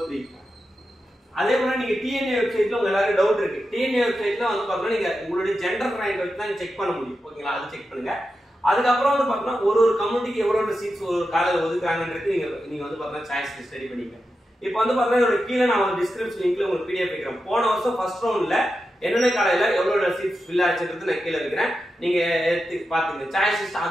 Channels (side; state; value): both; normal; correlation 0.89